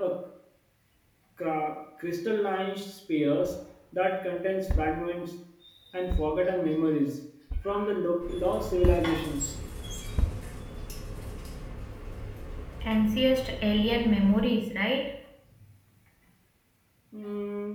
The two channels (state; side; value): identical; both; correlation 1.00